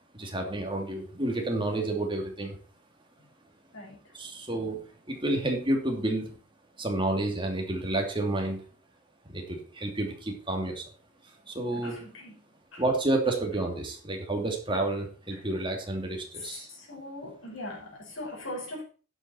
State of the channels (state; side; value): normal; both; correlation 0.50